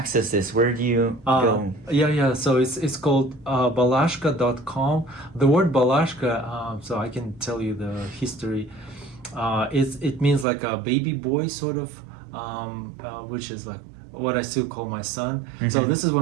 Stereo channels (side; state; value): left; drops out; at 10.5 s